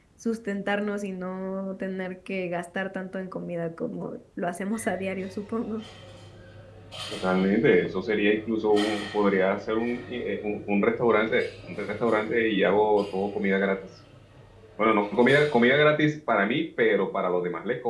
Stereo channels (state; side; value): identical; both; correlation 1.00